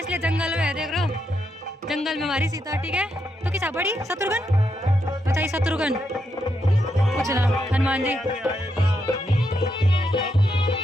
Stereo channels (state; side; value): normal; both; correlation 0.81